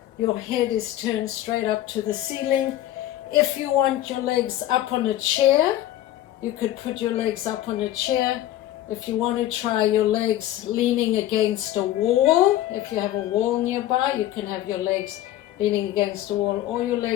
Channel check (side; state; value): right; quieter; 13.6 dB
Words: your head is turned straight up to the ceiling. If you want your legs up on a chair, you could put your legs up on a chair. If you want to try your legs leaning against a wall, if you have a wall nearby, you can have your legs leaning against a wall, or your